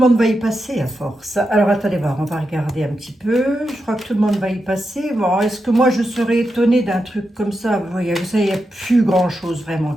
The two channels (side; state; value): both; normal; correlation 0.87